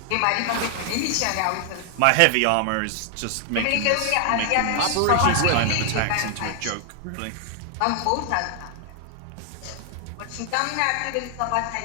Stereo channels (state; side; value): different; both; correlation 0.00